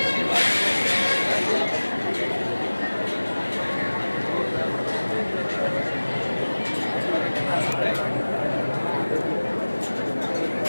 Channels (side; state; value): both; inverted; correlation -1.00